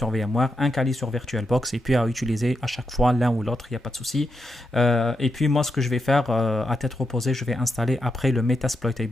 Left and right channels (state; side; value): normal; both; correlation 0.85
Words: VMware, un Kali sur VirtualBox et puis à utiliser à chaque fois l'un ou l'autre, il n'y a pas de souci. Et puis moi ce que je vais faire à tête reposée, je vais installer après le